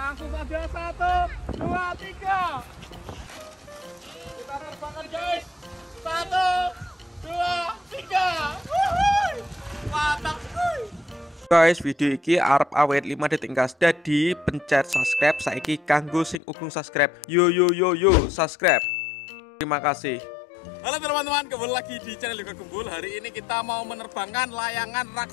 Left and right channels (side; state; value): right; drops out; at 16.4 s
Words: saja 1, 2, 3. Kita terbangkan guys. 1, 2, 3. Wuhui. Mantap. Guys, video iki arep awet 5 detik gas. Dadi pencet subscribe saiki kanggo sing urung subscribe. Yo subscribe. Terima kasih. Halo teman-teman, kembali lagi di channel Liga Gembul. Hari ini kita mau menerbangkan layangan